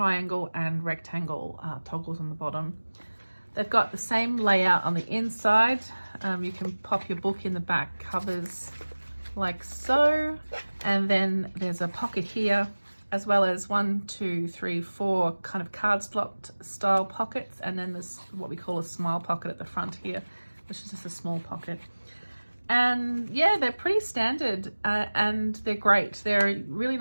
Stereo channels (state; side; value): inverted; both; correlation -1.00